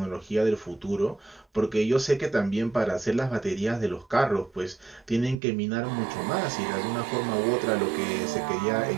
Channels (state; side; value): drops out; left; at 5.4 s